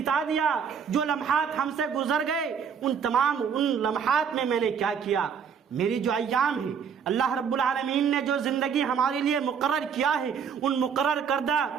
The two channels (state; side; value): quieter; left; 7.0 dB